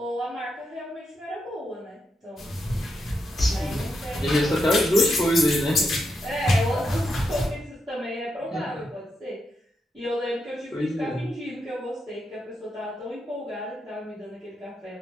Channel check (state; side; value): normal; both; correlation 0.83